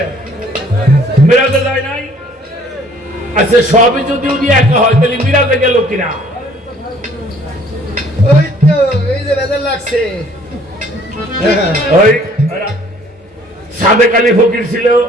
মিরাজে যায় নাই? আচ্ছা সবই যদি উনি একা হয় তাহলে মিরাজে গেল কিনা? ওই তো এই যে বেজার লাগছে। ওই সাদেক আলী ফকির ছিল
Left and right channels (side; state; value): both; normal; correlation 0.58